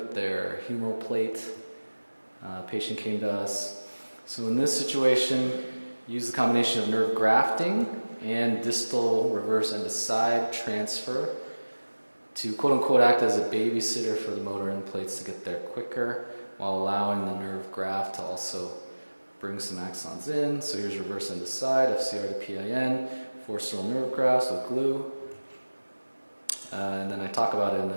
their humeral plate. Patient came to us. So in this situation, use the combination of nerve grafting and distal reverse end to side transfer to quote-unquote act as a babysitter for the motor end plates to get there quicker, while allowing the nerve graft to also bring some axons in. So here's reverse end to side, FCR to PIN, 4 sterile nerve grafts with glue. And then I talk about it in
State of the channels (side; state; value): both; inverted; correlation -1.00